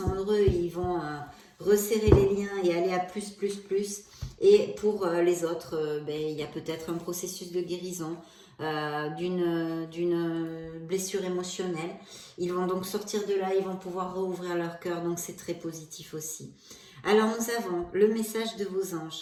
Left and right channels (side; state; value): both; identical; correlation 1.00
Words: heureux, ils vont resserrer les liens et aller à plus. Et pour les autres, bah, il y a peut-être un processus de guérison. D'une blessure émotionnelle. Ils vont donc sortir de là, ils vont pouvoir rouvrir leur cœur, donc c'est très positif aussi. Alors nous avons le message de vos